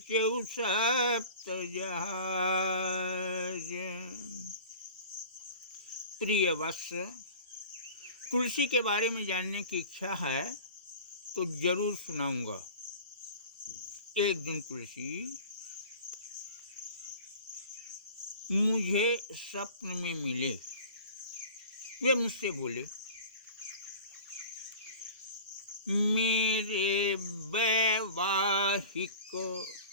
सप्त जहाज। प्रिय वत्स, तुलसी के बारे में जानने की इच्छा है तो जरूर सुनाऊंगा। एक दिन तुलसी मुझे स्वप्न में मिले। वे मुझसे बोले, मेरे वैवाहिक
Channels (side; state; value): both; inverted; correlation -0.39